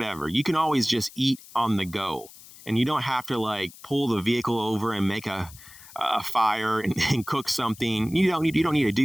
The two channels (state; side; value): noise; left; hiss, 20 dB below the sound